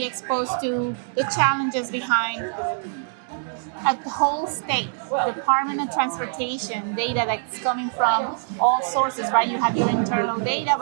exposed to the challenges behind at the whole state, Department of Transportation data that's coming from all sources, right? You have your internal data,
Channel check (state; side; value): silent; left; 63 dB below the other